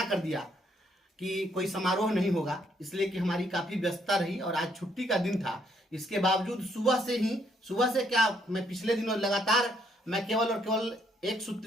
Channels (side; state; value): both; normal; correlation 0.71